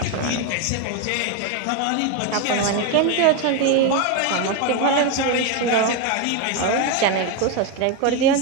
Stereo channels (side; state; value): both; different; correlation 0.02